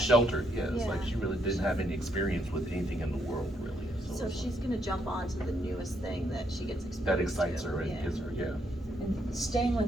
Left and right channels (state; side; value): normal; both; correlation 0.75